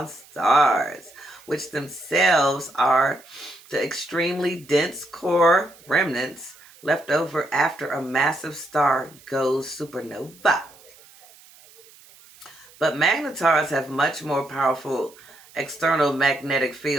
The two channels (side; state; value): right; noise; hiss, 24 dB below the sound